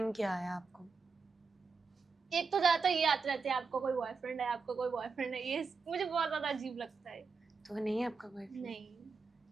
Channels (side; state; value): left; quieter; 4.8 dB